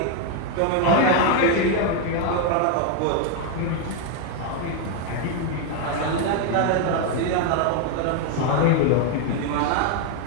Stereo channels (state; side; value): different; both; correlation 0.01